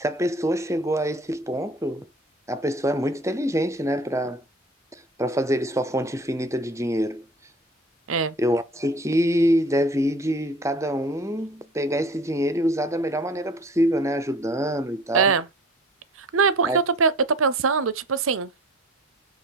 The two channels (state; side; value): normal; both; correlation 0.46